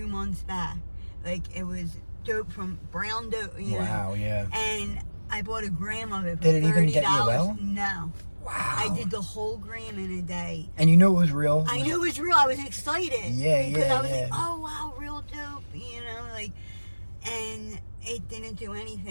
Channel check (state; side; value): inverted; both; correlation -1.00